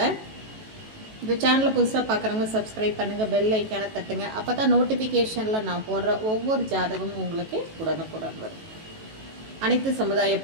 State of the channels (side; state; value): left; late; 18 ms